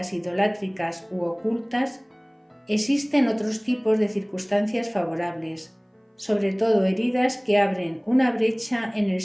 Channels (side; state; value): both; identical; correlation 1.00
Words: idolátricas u ocultas, existen otros tipos de circunstancias favorables, sobre todo heridas que abren una brecha en el